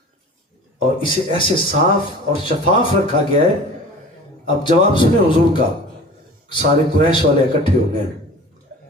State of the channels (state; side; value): normal; both; correlation 0.41